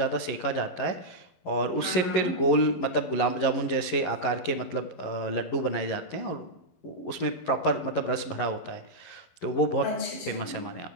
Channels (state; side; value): late; right; 11 ms